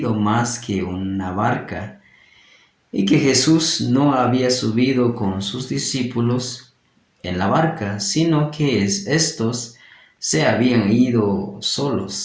más que una barca y que Jesús no había subido con sus discípulos en la barca, sino que estos se habían ido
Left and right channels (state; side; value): identical; both; correlation 1.00